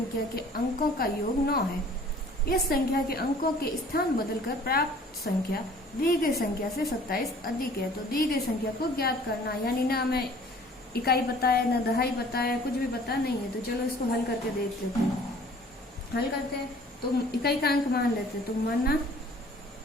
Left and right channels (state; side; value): normal; both; correlation 0.52